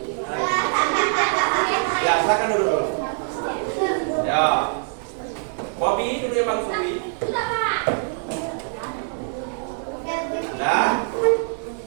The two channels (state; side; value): silent; left; digital silence